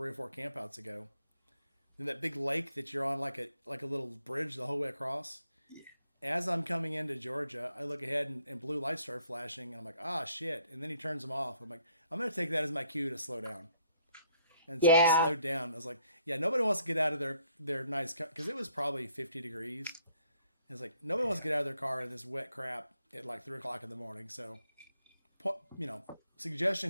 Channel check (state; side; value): inverted; both; correlation -0.67